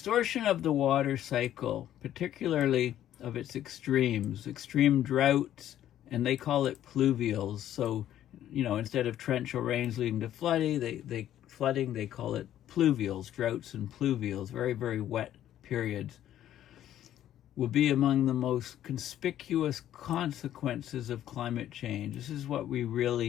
of the water cycle, particularly of its extremes, extreme droughts, and they call it pluvials. So, instead of torrential rains leading to flooding, they call it pluvials, droughts and pluvials, very, very wet periods, will be among the most conspicuous consequences of climate change. This is what we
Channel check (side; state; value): right; quieter; 11.8 dB